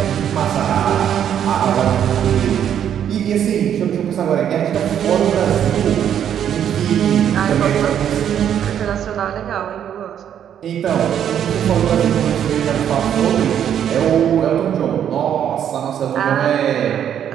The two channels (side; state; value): left; quieter; 9.5 dB